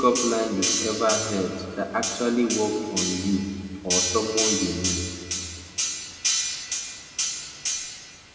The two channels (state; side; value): identical; both; correlation 1.00